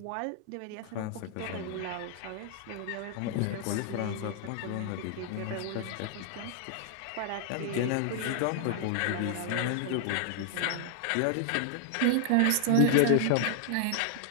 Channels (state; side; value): different; both; correlation 0.00